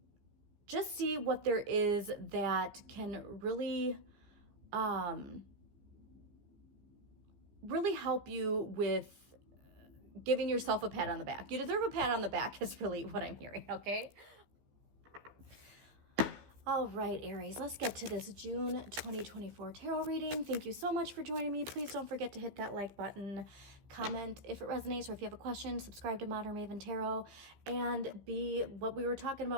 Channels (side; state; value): left; late; 15 ms